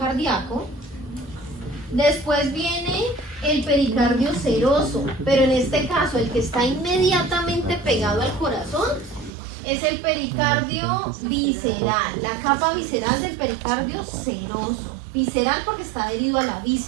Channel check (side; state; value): left; drops out; at 9.3 s